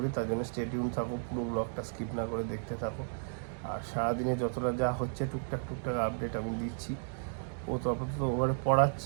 তার জন্য স্টে টিউন থাকো, পুরো ব্লগটা স্কিপ না করে দেখতে থাকো। আর সারাদিনে যতটা যা হচ্ছে টুকটাক আপডেট আমি দিচ্ছি। ও তো আপাতত ওভারে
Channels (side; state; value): left; silent; digital silence